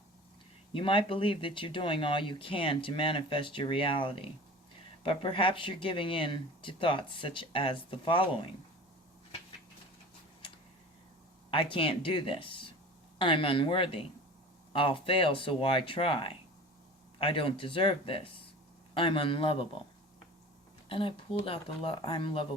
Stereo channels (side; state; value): both; normal; correlation 0.39